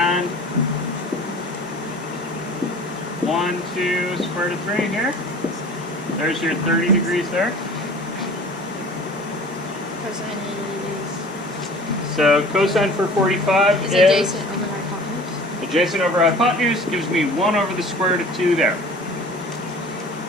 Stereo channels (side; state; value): both; normal; correlation 0.44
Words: 1, 2 square root of 3 here. There's your 30 degrees there. Cosine So cosine for 45 is is adjacent over hypotenuse. adjacent over hypotenuse gives me 1 over the square root of 2 there.